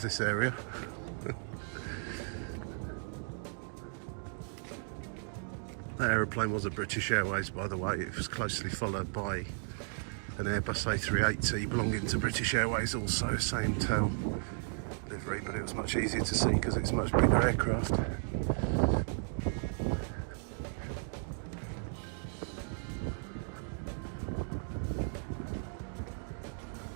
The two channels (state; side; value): silent; left; 55 dB below the other